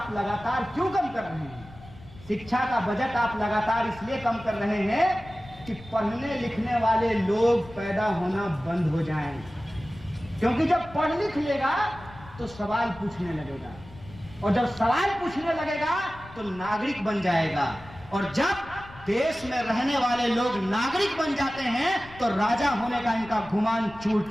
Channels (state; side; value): noise; left; rumble, 19 dB below the sound